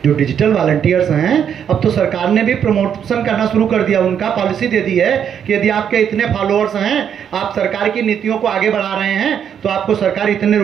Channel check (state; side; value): quieter; left; 8.4 dB